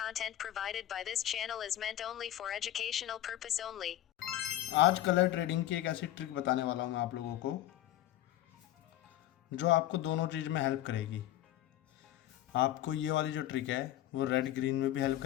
provided by this channel is meant only for educational purpose only. आज colour trading की एक ऐसी trick बताने वाला हूँ मैं आप लोगों को जो आपको दोनों चीज़ में हेल्प करेगी। आपको ये वाली जो ट्रिक है वो रेड ग्रीन में भी हेल्प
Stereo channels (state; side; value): quieter; right; 13.4 dB